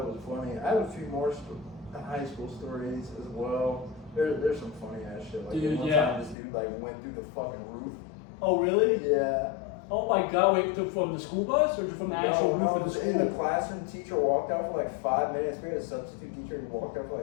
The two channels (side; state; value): right; drops out; at 6.4 s